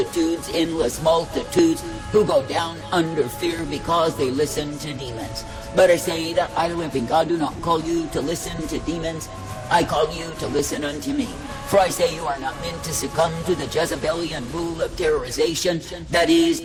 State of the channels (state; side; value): identical; both; correlation 1.00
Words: endless multitudes, who go down under fear because they listen to demons. But I say that I, the living God, do not call you to listen to demons. I call you to listen unto me. For I say you are not meant to succumb to the Jezebelian rule of terrorization that is